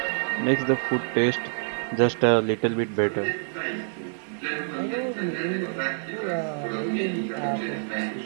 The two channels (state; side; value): silent; left; 60 dB below the other